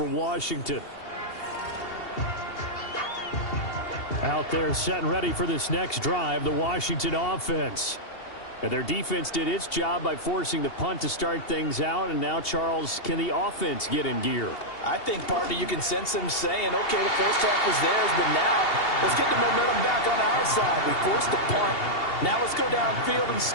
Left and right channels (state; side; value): late; right; 2.8 ms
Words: Washington. Out there set and ready for this next drive, the Washington offense. And their defense did its job by forcing the punt to start things out. And now, Charles, can the offense get in gear? I think, partner, you can sense them saying, okay, the first half was theirs, but now let's get the momentum back on our side. We forced a punt. Now let's go downfield and